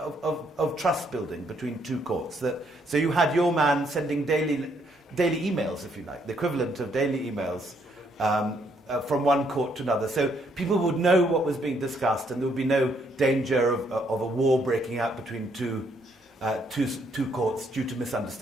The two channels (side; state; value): both; normal; correlation 0.71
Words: of trust building between two courts. So you had your man sending daily emails, if you like, the equivalent of daily emails from one court to another. So people would know what was being discussed, and there would be no danger of a war breaking out between two courts due to